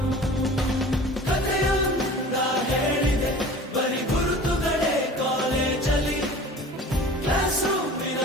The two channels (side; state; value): both; normal; correlation 0.42